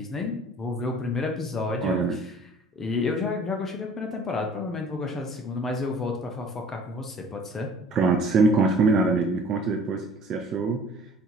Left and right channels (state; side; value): normal; both; correlation 0.50